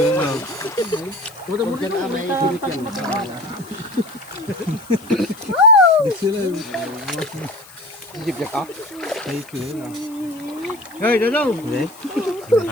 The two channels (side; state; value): left; noise; hiss, 22 dB below the sound